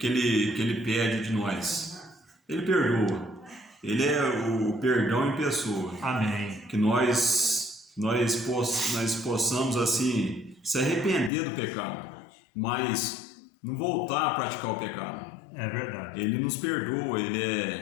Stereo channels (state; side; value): drops out; right; at 11.3 s